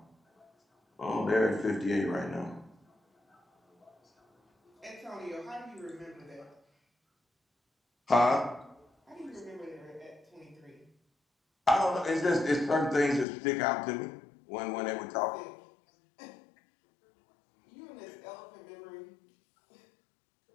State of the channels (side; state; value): right; drops out; at 13.2 s